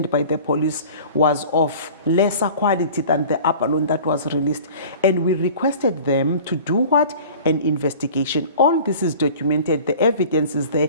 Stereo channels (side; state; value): both; inverted; correlation -0.43